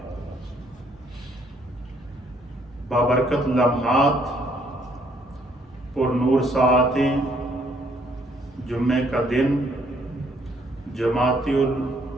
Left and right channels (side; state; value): both; normal; correlation 0.67